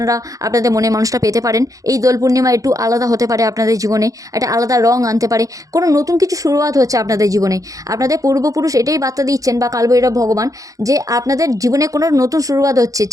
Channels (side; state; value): left; late; 0.17 ms